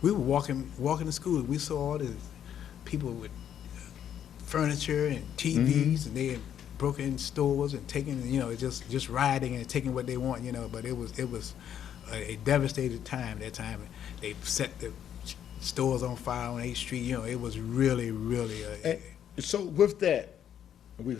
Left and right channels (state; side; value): quieter; right; 9.6 dB